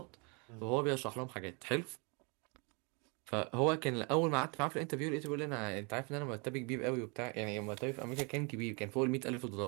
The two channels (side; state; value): left; quieter; 33.2 dB